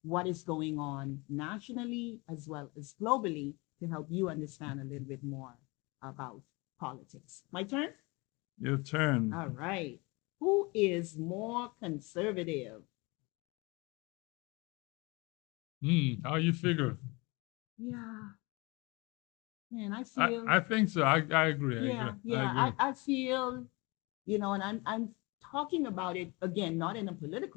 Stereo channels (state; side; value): quieter; right; 26.1 dB